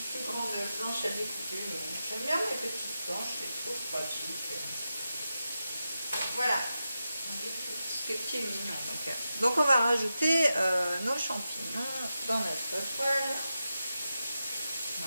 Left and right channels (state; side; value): inverted; both; correlation -0.90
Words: planche à découper, mais j'aime bien les petites planches, je les trouve pratiques. Voilà, ce qui est mignon. Donc on va rajouter nos champignons dans notre poêle.